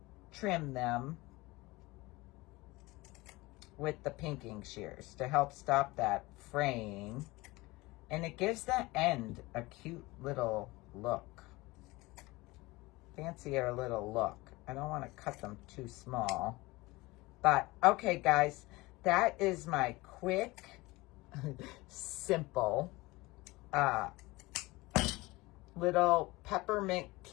trim them with the pinking shears to help stop that fraying. And it gives the end a cute little look. Fancier little look. I don't want to cut them too small. But, okay, guys. That is my quick, simple, little peppermint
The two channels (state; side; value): quieter; right; 21.5 dB